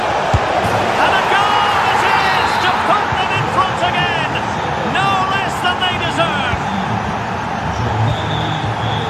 And a goal it is to put them in front again. No less than they deserve.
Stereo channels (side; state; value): both; identical; correlation 1.00